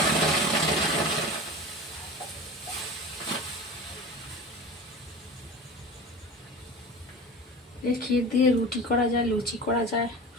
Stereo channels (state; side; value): normal; both; correlation 0.33